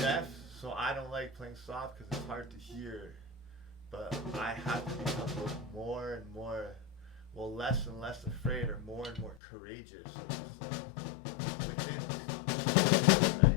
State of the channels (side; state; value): right; drops out; at 9.4 s